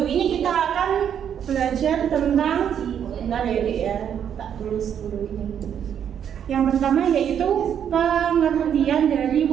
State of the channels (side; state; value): left; quieter; 8.8 dB